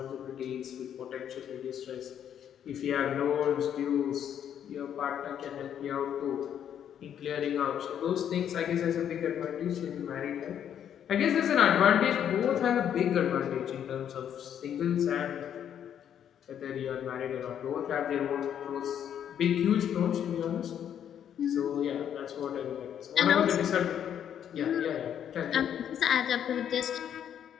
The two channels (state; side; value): quieter; right; 9.4 dB